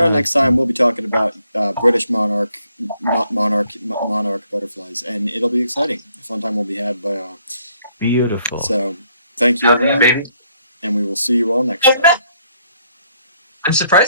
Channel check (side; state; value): both; inverted; correlation -0.69